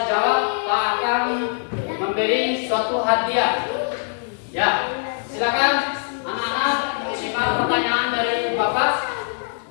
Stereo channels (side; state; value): right; silent; digital silence